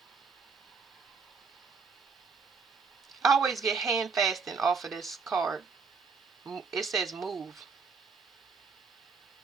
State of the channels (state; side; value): quieter; left; 5.1 dB